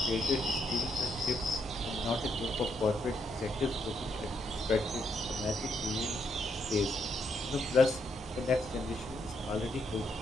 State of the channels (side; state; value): both; normal; correlation 0.77